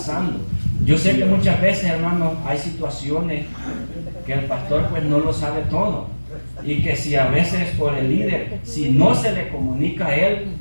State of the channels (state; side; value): inverted; both; correlation -1.00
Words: Yo sé que muchas veces, hermanos, hay situaciones que el pastor pues no lo sabe todo. Y que si a veces por el líder, si no se le comunica a él,